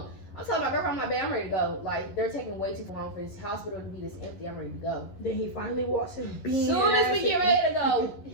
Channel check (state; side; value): late; right; 11 ms